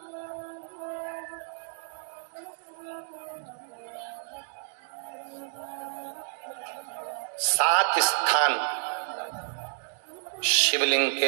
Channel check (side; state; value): left; silent; digital silence